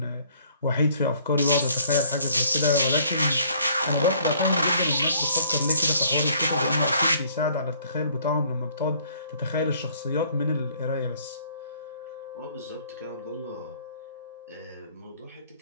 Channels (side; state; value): both; inverted; correlation -0.60